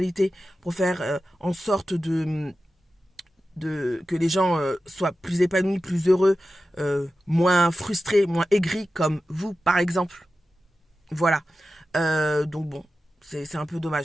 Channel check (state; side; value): normal; both; correlation 0.93